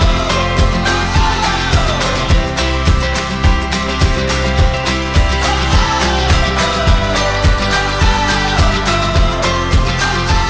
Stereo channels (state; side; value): identical; both; correlation 1.00